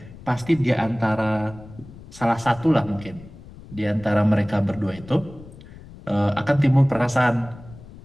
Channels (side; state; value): left; noise; rumble, 18 dB below the sound